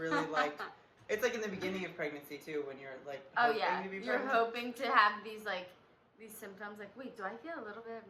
like, it's like in the beginning of pregnancy too, when you're like, Oh yeah, to be you're pregnant. hoping to have these symptoms, like, wait, do I feel a little bit of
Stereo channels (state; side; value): identical; both; correlation 1.00